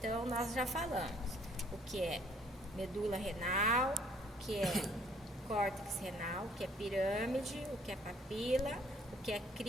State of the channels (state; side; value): normal; both; correlation 0.61